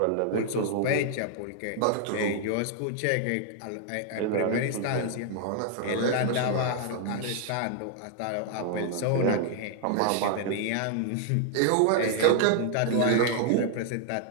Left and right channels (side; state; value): both; different; correlation 0.00